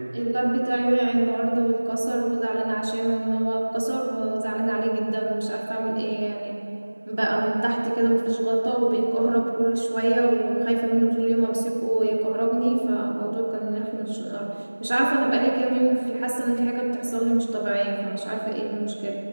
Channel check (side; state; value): both; inverted; correlation -1.00